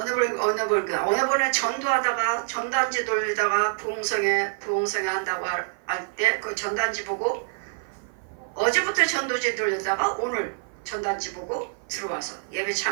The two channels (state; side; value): silent; left; 55 dB below the other